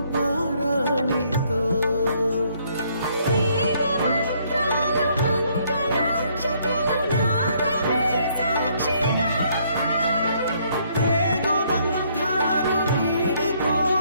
పారాణితో వేద మంత్రాలు మంగళాక్షతలు నాదమే సాక్షిగా పేగు బంధాలు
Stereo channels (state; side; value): inverted; both; correlation -0.67